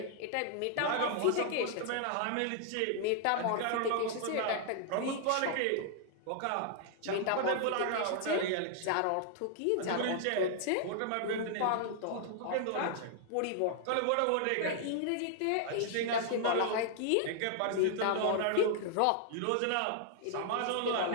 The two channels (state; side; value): different; both; correlation 0.00